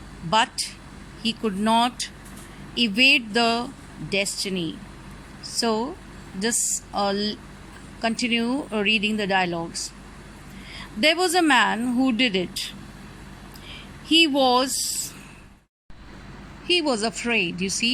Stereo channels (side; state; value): both; identical; correlation 1.00